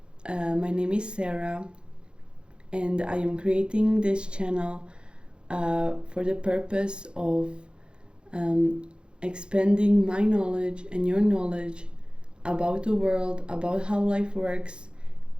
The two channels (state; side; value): late; left; 0.052 ms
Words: My name is Sarah, and I am creating this channel for the purpose of expanding my knowledge and your knowledge about the world, about how life works,